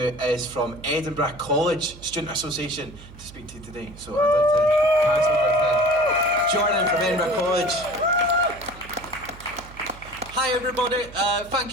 from Edinburgh College Student Association, to speak to you today. So I'd like to pass over to Jordan from Edinburgh College. Hi everybody, thank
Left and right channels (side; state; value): right; noise; hum, 18 dB below the sound